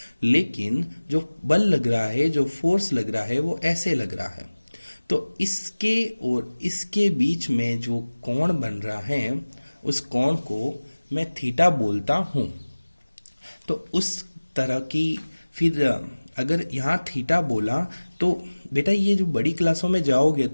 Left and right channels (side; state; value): both; inverted; correlation -1.00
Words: लेकिन जो बल लग रहा है, जो फोर्स लग रहा है, वो ऐसे लग रहा है। तो इसके और इसके बीच में जो कोण बन रहा है, उस कोण को मैं थीटा बोलता हूं। तो उस तरह की, फिर अगर यहाँ थीटा बोला तो बेटा ये जो बड़ी क्लासों में जाओगे